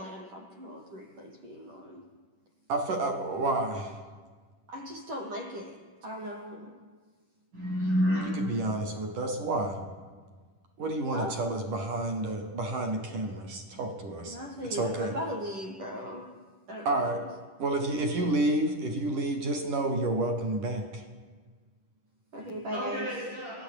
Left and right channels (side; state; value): left; late; 10 ms